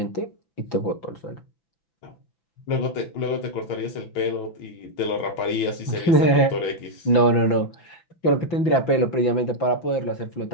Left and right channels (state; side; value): late; right; 5.9 ms